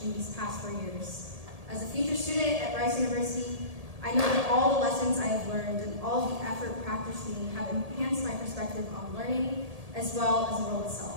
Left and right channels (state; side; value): late; left; 1.7 ms